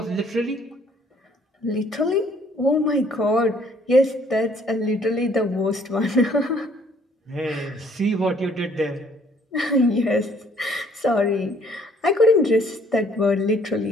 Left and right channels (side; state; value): both; normal; correlation 0.61